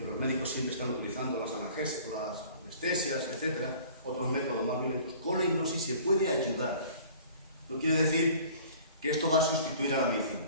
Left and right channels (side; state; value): both; inverted; correlation -0.48